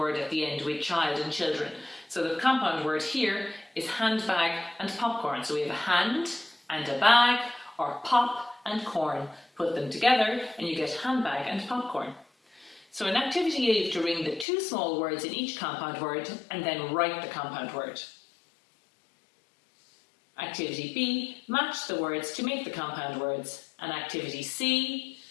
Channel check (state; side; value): drops out; right; at 14.5 s